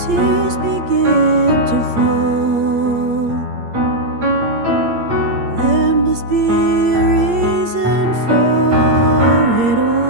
begin to fall, there must be a reason for it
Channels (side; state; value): left; late; 8.6 ms